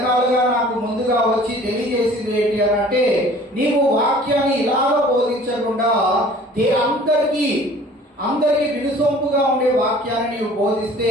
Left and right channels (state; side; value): normal; both; correlation 0.49